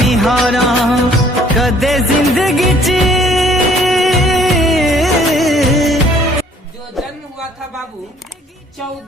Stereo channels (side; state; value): both; normal; correlation 0.58